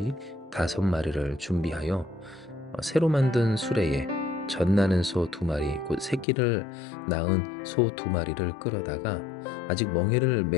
5마리를 준비하여 새로 만든 수레에 젖나는 소 2마리 곧 새끼를 낳은 소 2마리를 끌어다가 아직 멍에를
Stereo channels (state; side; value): drops out; right; at 6.2 s